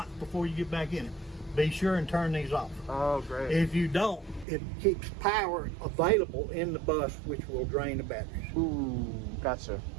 before you get back in it. Be sure and turn these off. Oh, great. If you don't, it keeps power available in the bus, which will drain the batteries. Ooh, gotcha.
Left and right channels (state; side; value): drops out; left; at 4.5 s